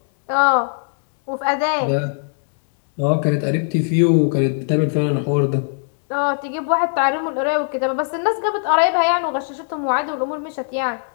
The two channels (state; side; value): silent; right; digital silence